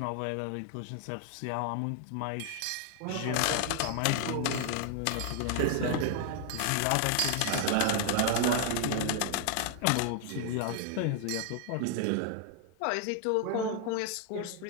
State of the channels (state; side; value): different; both; correlation 0.00